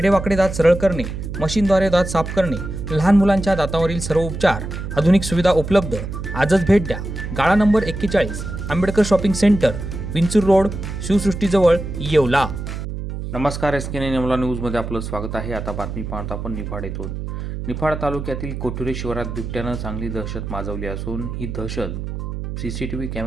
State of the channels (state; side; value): noise; right; hum, 6 dB below the sound